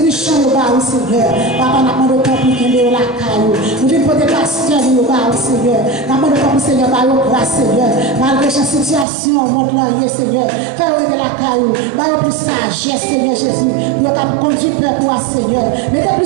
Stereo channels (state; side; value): drops out; left; at 9.1 s